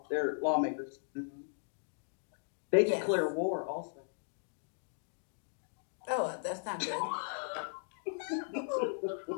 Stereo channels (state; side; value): silent; right; digital silence